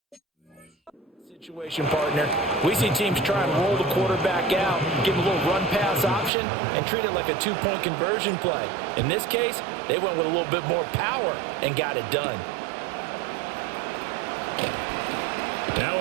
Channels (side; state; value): left; drops out; at 6.3 s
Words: situation, partner. We see teams try and roll the quarterback out, give him a little run-pass option, and treat it like a 2-point conversion play. In this case, they went with a little bit more power and got it done. Now